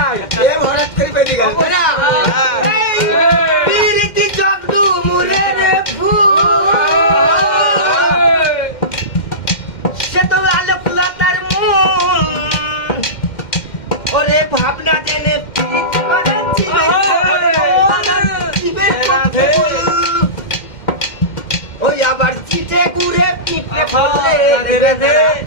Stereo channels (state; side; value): late; right; 2.1 ms